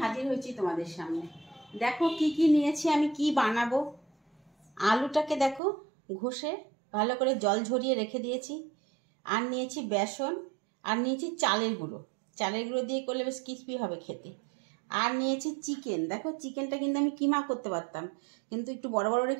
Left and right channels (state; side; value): drops out; left; at 5.6 s